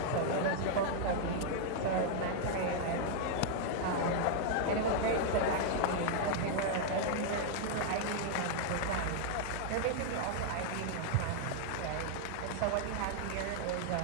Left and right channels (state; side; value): different; both; correlation -0.01